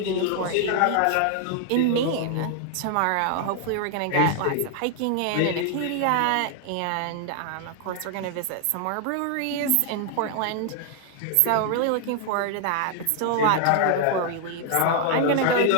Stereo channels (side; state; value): both; different; correlation 0.00